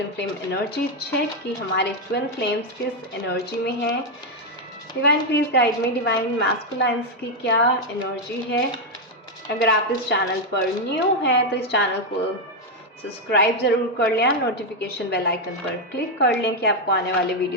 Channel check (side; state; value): both; normal; correlation 0.03